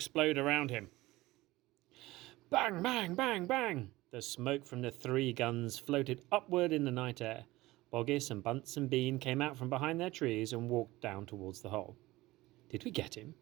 around him. Bang, bang, bang, bang! The smoke from the 3 guns floated upward in the night air. Boggis and Bunce and Bean came out from behind their trees and walked down towards the hole. "Did we get him?"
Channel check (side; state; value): left; quieter; 18.9 dB